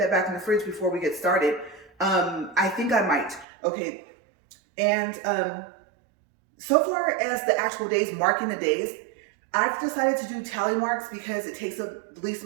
back in the fridge before we get started. I think I might. Okay, and so far as the actual days, marking the days, I've decided to do tally marks because it takes up the least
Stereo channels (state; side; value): drops out; left; at 3.5 s